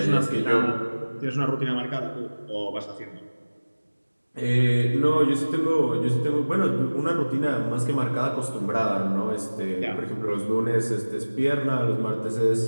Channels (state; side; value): inverted; both; correlation -1.00